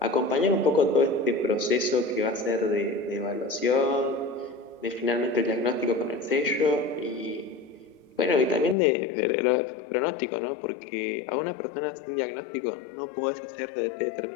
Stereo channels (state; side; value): drops out; right; at 8.8 s